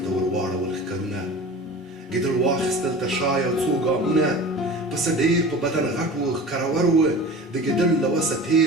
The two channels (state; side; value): normal; both; correlation 0.36